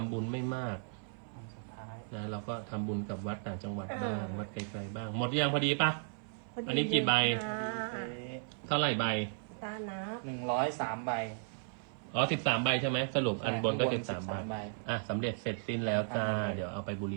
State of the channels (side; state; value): left; silent; 54 dB below the other